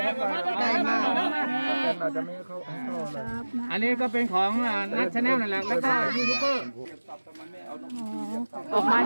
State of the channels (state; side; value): inverted; both; correlation -1.00